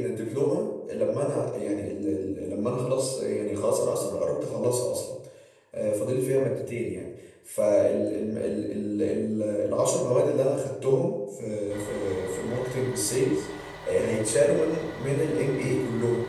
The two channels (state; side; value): identical; both; correlation 1.00